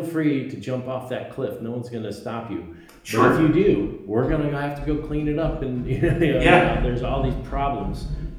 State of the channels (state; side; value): identical; both; correlation 1.00